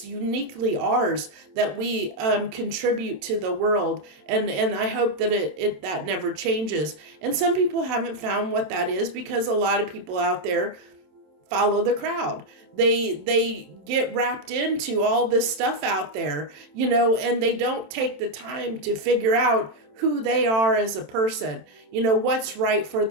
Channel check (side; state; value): left; late; 27 ms